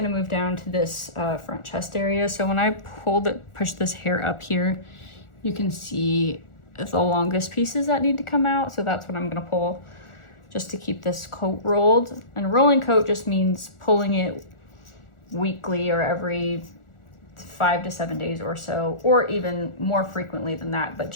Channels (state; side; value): late; right; 1.4 ms